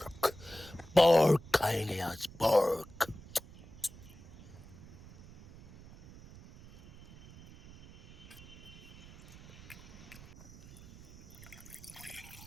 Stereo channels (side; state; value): right; noise; rumble, 19 dB below the sound